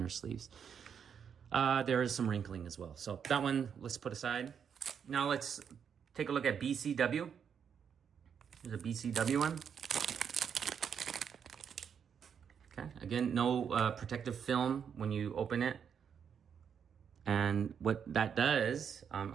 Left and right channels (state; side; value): quieter; left; 7.5 dB